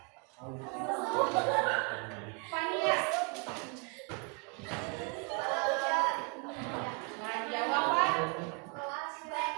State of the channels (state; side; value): quieter; left; 34.4 dB